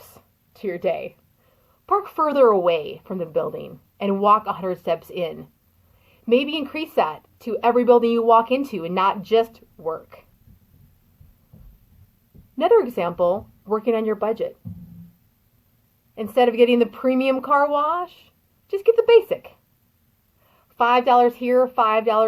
to your day? Park further away from the building and walk 100 steps in. Maybe increase that to every building you walk into and not just work. Another example, working on your budget. Instead of getting the premium car wash, just get the basic. $5 here,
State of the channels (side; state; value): both; identical; correlation 1.00